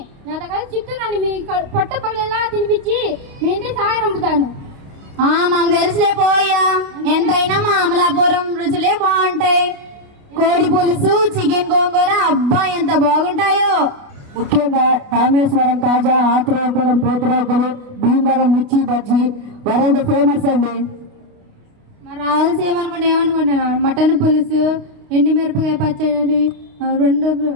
నా దగ్గర చిత్తూరు మీ పొట్ట పగలేలా తినిపించి మీ ఇంటికి సహాయ పంపుతాను. మాకు తెలుసులే పోయా, ఎంతైనా మా అమలాపురం రుచులే బాగుంటాయి. కోడి పులుసు, చికెన్ గోంగూర, అబ్బా ఎంత బాగుంటాయో. ముఖ్యంగా రామేశ్వరం తాజా, ఆత్రేయపురం పోతురోకలు, భీమవరం మిర్చి బజ్జీ వరల్డ్ ఫేమస్ అండి. మా రాయలసీమ అనుకుంటే ఏమనుకుంటున్నాను, మటన్ పులుసు, ఎండుమిరపకాయ పచ్చడి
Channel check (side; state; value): left; late; 29 ms